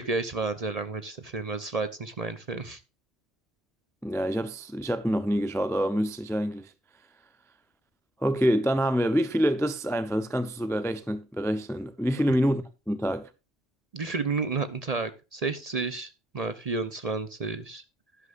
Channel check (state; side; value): normal; both; correlation 0.75